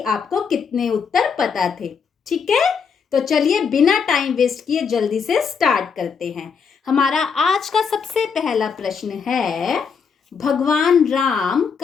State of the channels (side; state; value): right; quieter; 6.1 dB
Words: कितने उत्तर पता थे। ठीक है, तो चलिए बिना टाइम वेस्ट किए जल्दी से स्टार्ट करते हैं। हमारा आज का सबसे पहला प्रश्न है, भगवान राम